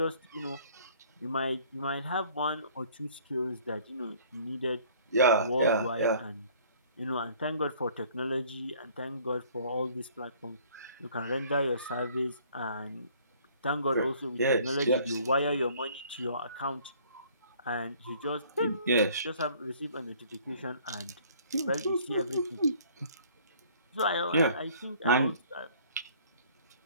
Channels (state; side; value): inverted; both; correlation -0.56